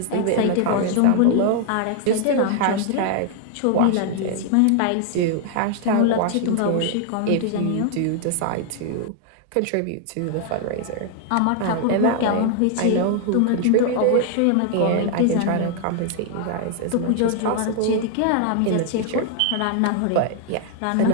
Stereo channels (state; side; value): different; both; correlation 0.00